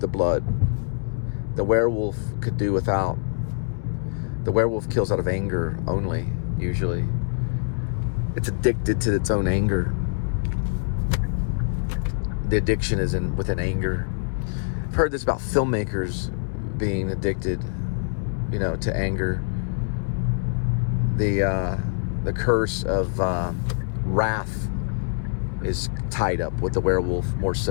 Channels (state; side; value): silent; right; 61 dB below the other